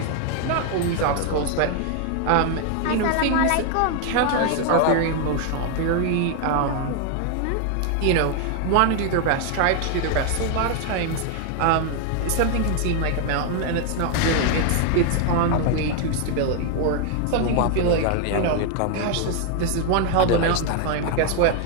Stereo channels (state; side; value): different; both; correlation 0.00